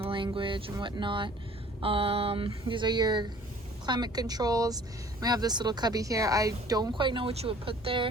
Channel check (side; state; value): both; normal; correlation 0.52